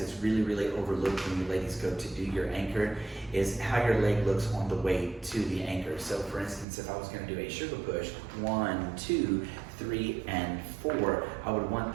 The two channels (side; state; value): left; drops out; at 6.7 s